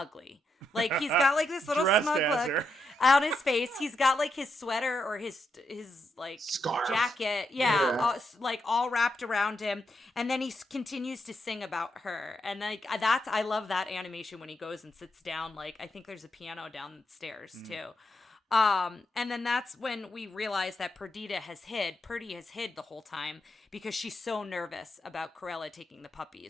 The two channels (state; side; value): normal; both; correlation 0.82